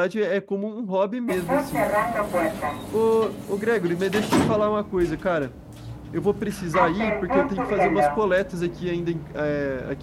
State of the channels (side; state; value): both; identical; correlation 1.00